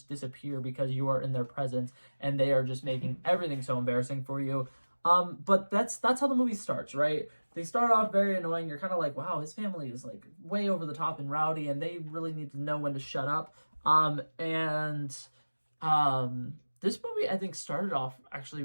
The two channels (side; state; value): both; inverted; correlation -1.00